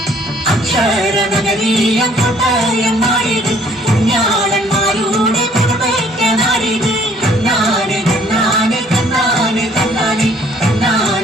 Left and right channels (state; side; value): normal; both; correlation 0.60